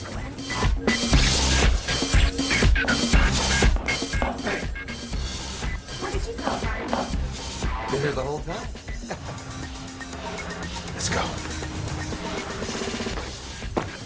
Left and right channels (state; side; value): identical; both; correlation 1.00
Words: do it. Where did you go, Martin? Been here the whole time? Let's go.